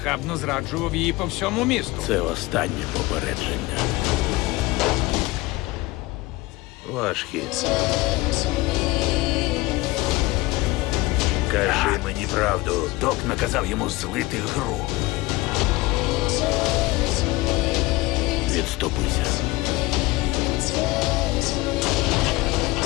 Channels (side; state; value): right; quieter; 20.6 dB